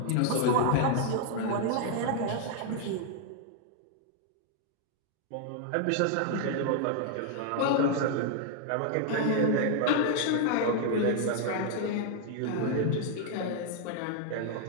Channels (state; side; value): different; both; correlation 0.00